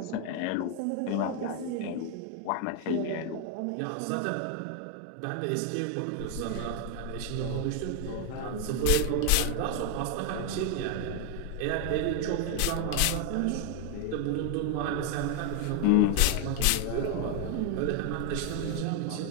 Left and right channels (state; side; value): different; both; correlation 0.00